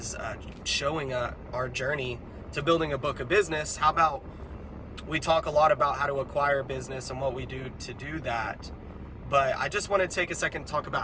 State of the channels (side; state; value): both; identical; correlation 1.00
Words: showing our journey to building a book of business. How about we talk a lot about how to acquire business and what we do to do that, but I just want to take a second to talk about